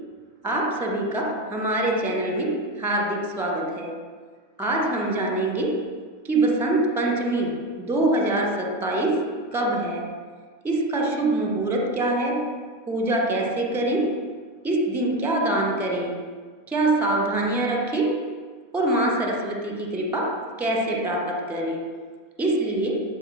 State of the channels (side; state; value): both; normal; correlation 0.19